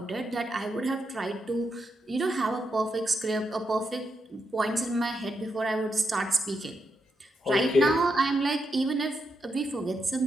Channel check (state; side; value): normal; both; correlation 0.83